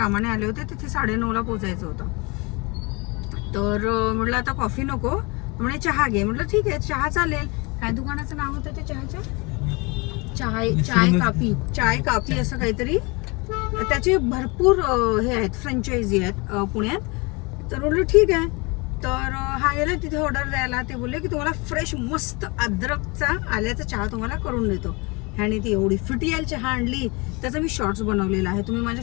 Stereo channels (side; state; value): right; quieter; 27.7 dB